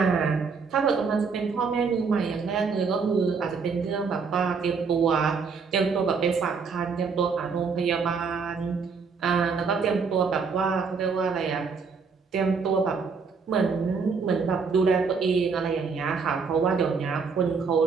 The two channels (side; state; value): left; quieter; 5.3 dB